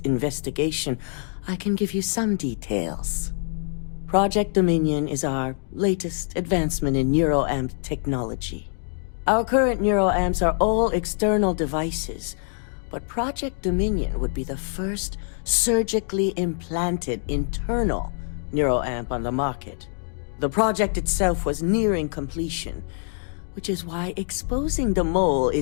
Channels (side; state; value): right; silent; 62 dB below the other